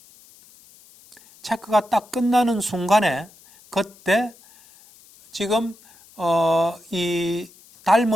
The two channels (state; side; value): noise; left; hiss, 26 dB below the sound